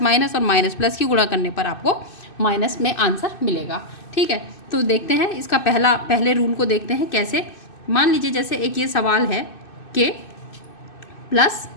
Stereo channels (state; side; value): late; right; 2.6 ms